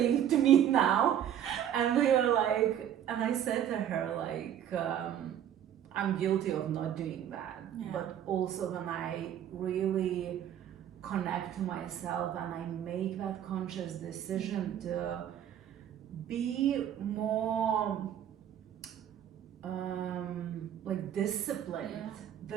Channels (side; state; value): left; quieter; 10.2 dB